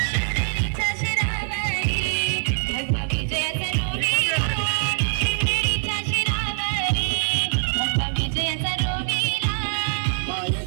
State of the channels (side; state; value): left; silent; 57 dB below the other